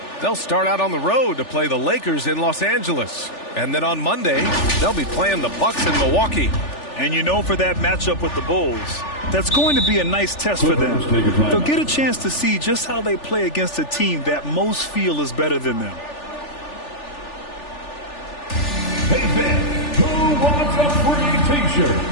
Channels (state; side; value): late; right; 3.4 ms